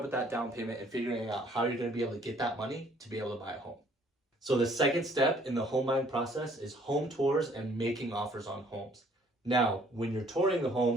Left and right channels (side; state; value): both; normal; correlation 0.60